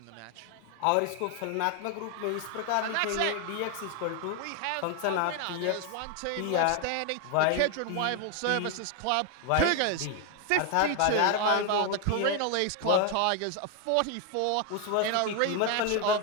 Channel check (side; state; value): both; different; correlation 0.01